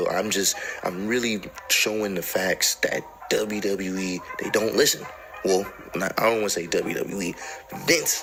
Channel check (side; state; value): both; identical; correlation 1.00